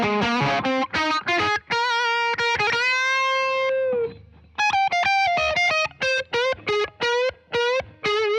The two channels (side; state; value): both; identical; correlation 1.00